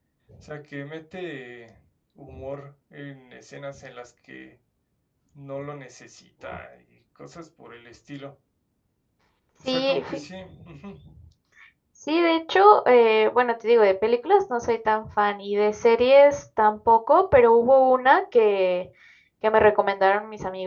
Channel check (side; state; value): both; identical; correlation 1.00